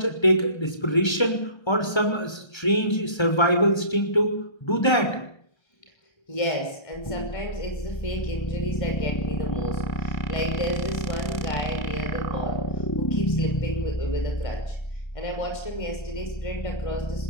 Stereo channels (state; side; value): late; right; 1.3 ms